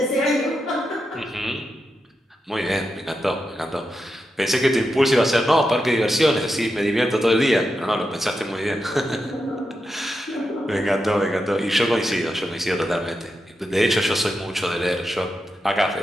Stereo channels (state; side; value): normal; both; correlation 0.87